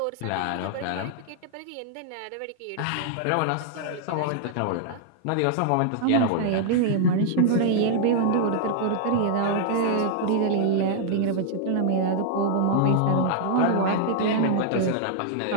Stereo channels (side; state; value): both; different; correlation -0.01